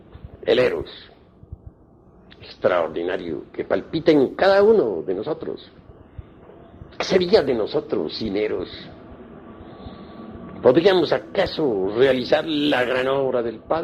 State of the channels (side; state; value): both; identical; correlation 1.00